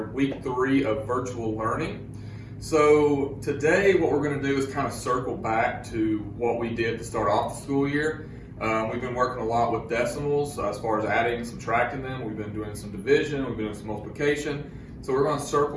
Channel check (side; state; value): both; identical; correlation 1.00